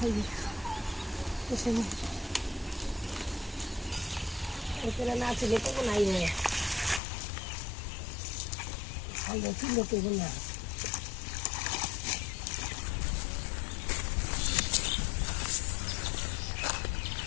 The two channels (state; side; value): drops out; right; at 7.0 s